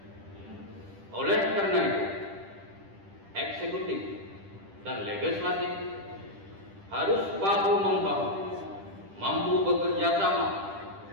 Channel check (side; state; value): left; late; 10 ms